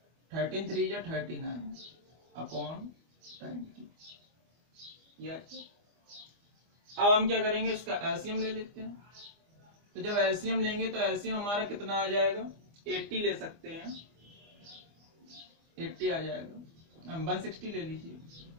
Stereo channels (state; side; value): late; left; 25 ms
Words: 13 3 जा 39 अपॉन 20। अब हम क्या करेंगे, इसका एलसीएम ले लेते हैं। तो जब एलसीएम लेंगे तो एलसीएम हमारा कितना आ जाएगा, 80 ले सकते हैं, 80 आ जाएगा। हम 160 ले लीजिए।